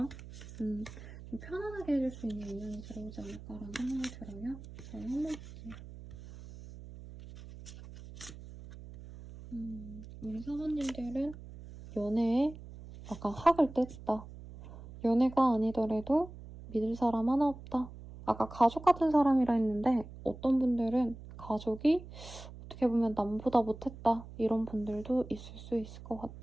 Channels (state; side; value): noise; right; hum, 15 dB below the sound